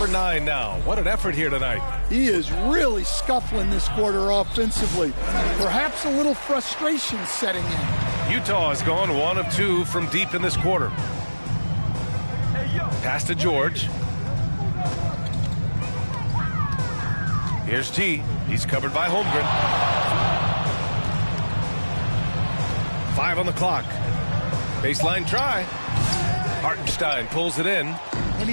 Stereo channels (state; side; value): inverted; both; correlation -1.00